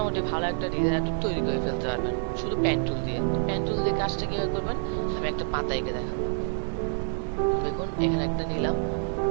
ভালো একটা ডিজাইন তৈরি করে ফেলতে পারবেন শুধু পেন টুল দিয়ে। পেন টুল দিয়ে কাজটা কিভাবে করবেন আমি একটা পাতা এঁকে দেখাবো। দেখুন এখানে একটা নিলাম,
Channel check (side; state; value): left; silent; 60 dB below the other